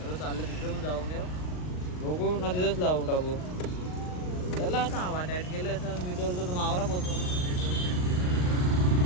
चाललं तिकडे पण जाऊन येऊ बघू ना तिथंच लावून टाकू. त्याला आता हवा टाईट केलं असं मी तर मावरा पोचवून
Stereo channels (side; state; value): right; late; 39 ms